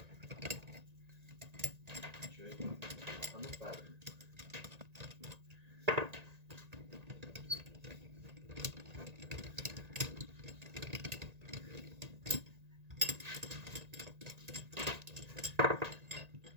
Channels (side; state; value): left; late; 1.9 ms